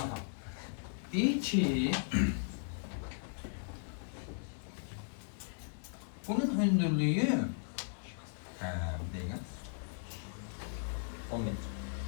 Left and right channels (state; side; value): silent; right; digital silence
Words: Deyir ki, bunun hündürlüğü bir dakika. 10 metre.